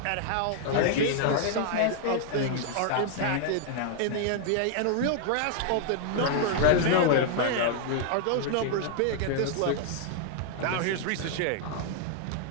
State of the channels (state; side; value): different; both; correlation -0.01